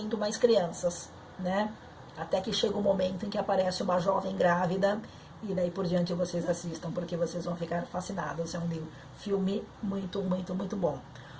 mais crianças, né? Até que chega um momento em que aparece uma jovem grávida, e daí por diante vocês assistam, porque vocês vão ficar fascinados. É um filme muito, muito, muito bom.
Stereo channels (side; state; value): both; identical; correlation 1.00